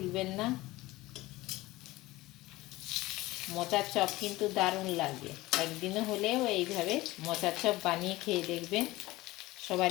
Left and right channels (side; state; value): right; quieter; 19.0 dB